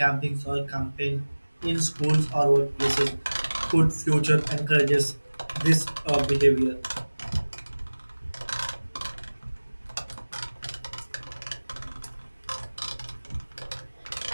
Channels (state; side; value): inverted; both; correlation -1.00